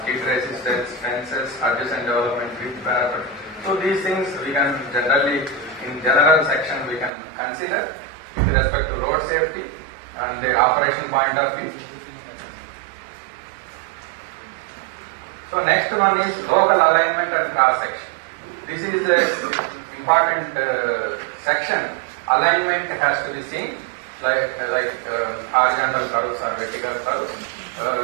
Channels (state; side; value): drops out; left; at 7.1 s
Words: skid resistance, fences, adjacent development, width parapet. So these things we can generally, in general section, we can consider with respect to road safety and their operation point of view. So next one is local alignment and cross section. This is an important section. Alignment has to be seen, like horizontal curves or vertical curves.